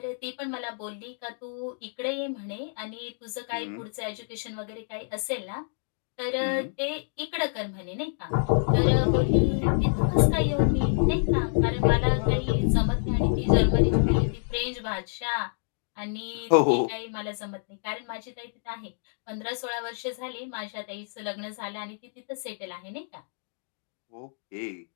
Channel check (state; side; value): silent; right; digital silence